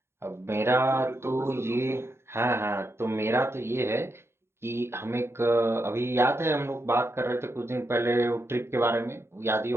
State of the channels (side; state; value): left; late; 0.12 ms